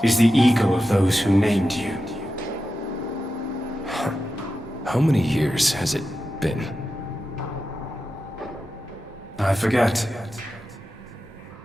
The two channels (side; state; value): both; normal; correlation 0.91